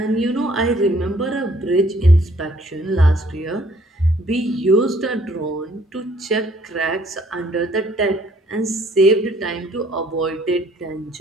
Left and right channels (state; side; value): normal; both; correlation 0.61